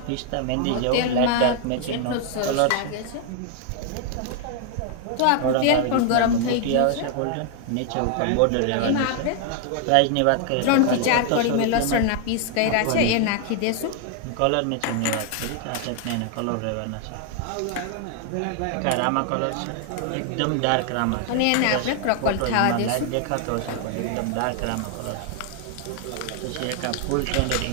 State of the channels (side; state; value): both; different; correlation 0.00